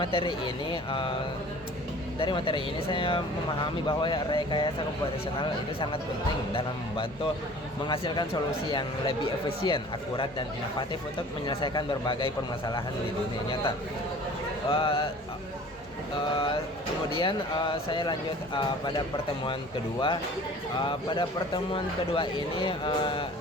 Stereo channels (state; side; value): normal; both; correlation 0.46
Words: materi ini saya memahami bahwa rekayasa komputasional itu sangat penting dalam membantu menghasilkan solusi yang lebih efisien, akurat, dan inovatif untuk menyelesaikan berbagai permasalahan di dunia nyata. Kemudian saya lanjut pada pertemuan kedua. Pada pertemuan kedua ini